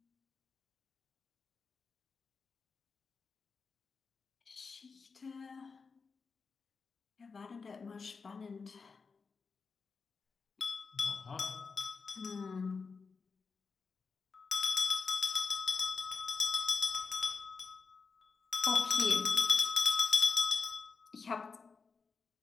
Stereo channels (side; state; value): right; quieter; 5.0 dB